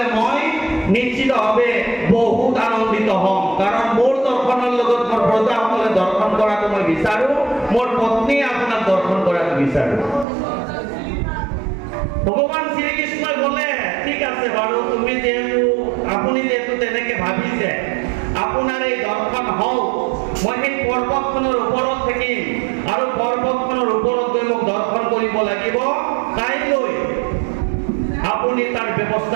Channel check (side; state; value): left; drops out; at 10.2 s